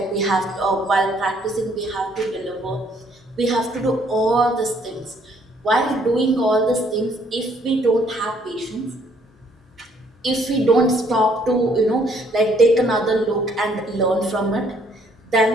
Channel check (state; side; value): normal; both; correlation 0.65